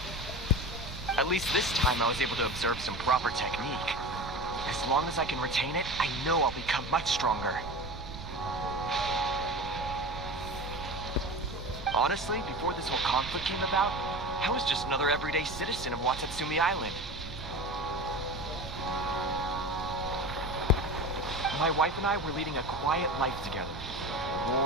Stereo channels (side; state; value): right; noise; rumble, 11 dB below the sound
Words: At least this time I was able to observe some proper technique. As long as I can retain it, I know I'll become much stronger. Honestly, before this whole conflict came about, I was just another everyday citizen of Watatsumi Island. My wife and I were leading a quiet life together.